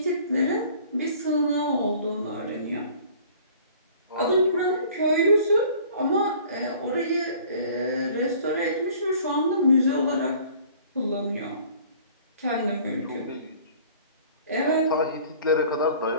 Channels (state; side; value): inverted; both; correlation -0.50